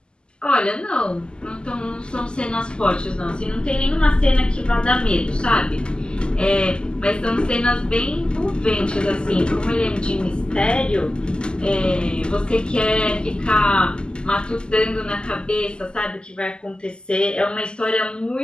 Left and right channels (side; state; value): right; late; 0.048 ms